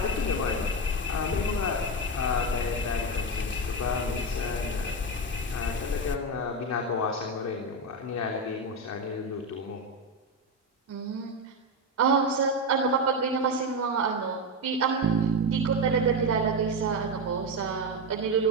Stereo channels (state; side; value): normal; both; correlation 0.12